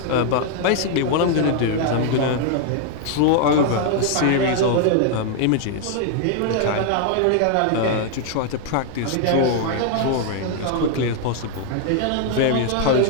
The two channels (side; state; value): both; different; correlation 0.00